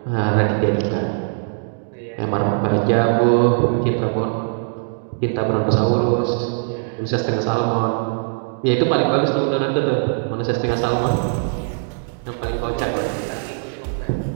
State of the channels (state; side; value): silent; left; digital silence